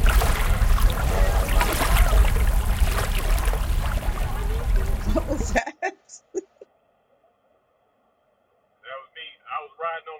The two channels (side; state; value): both; identical; correlation 1.00